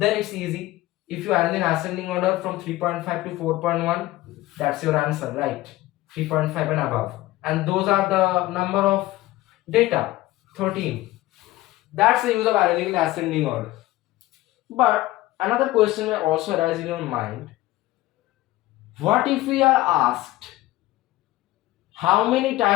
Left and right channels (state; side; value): quieter; right; 17.3 dB